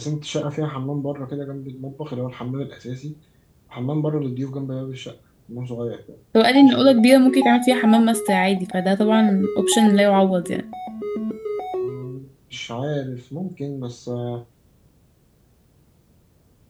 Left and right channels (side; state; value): both; identical; correlation 1.00